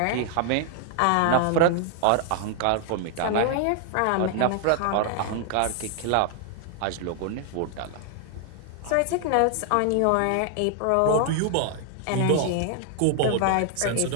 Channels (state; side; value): different; both; correlation 0.00